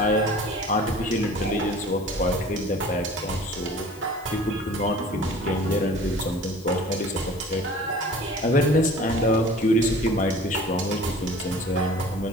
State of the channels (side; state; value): left; noise; hiss, 23 dB below the sound